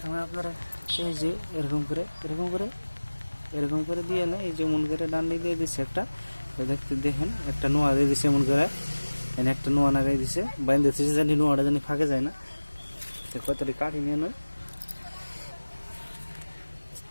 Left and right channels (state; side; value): inverted; both; correlation -1.00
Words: আপনারা এই যে এরকম করে দিয়ে না, এই যে মন করে ডান দিয়ে দিচ্ছে একটা, দেখতে দেখেন একটা নোয়া দিয়ে দিছে এমন করে, এনে একটা নোয়া লাগাই দিছে, বাইন্দে দিচ্ছে জানি নোয়াটা জানি ফাঁকে যায় না। তো কতটি কাঠি নিয়ে নয়